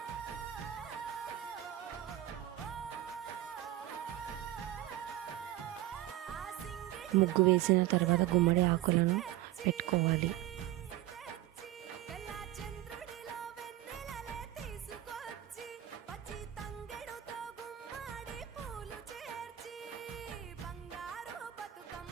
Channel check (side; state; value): left; quieter; 14.1 dB